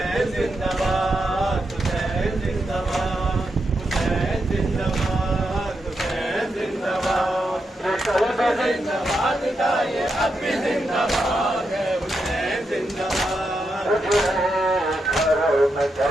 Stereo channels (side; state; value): both; normal; correlation 0.84